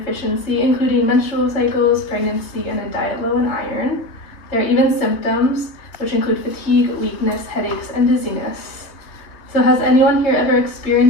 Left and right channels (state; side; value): late; right; 3.2 ms